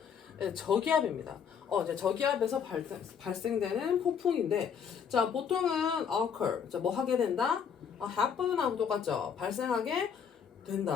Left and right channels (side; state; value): right; quieter; 7.1 dB